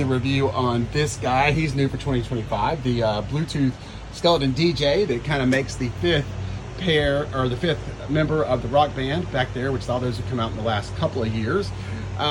review on this guy. He's new for 2025, the Bluetooth skeleton DJ that kind of makes the fifth member of the rock band back there, which all those have come out in the last couple of years.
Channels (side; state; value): both; identical; correlation 1.00